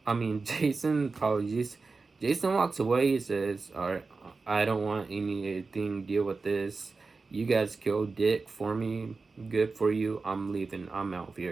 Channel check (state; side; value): quieter; left; 4.1 dB